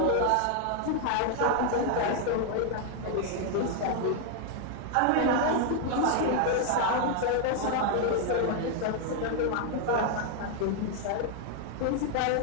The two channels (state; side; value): different; both; correlation 0.00